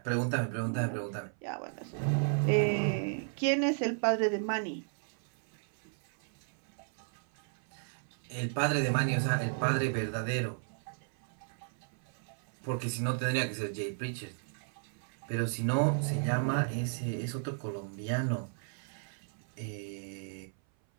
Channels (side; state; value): left; silent; 55 dB below the other